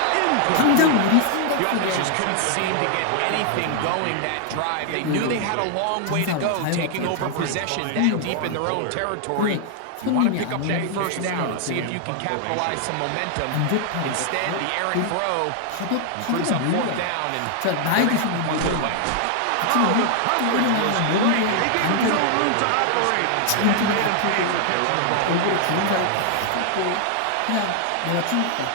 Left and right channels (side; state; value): both; different; correlation 0.00